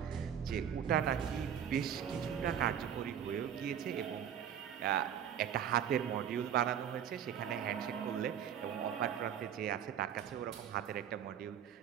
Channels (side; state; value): left; quieter; 9.1 dB